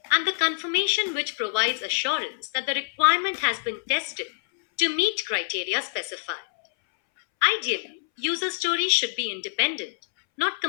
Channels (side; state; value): right; silent; 61 dB below the other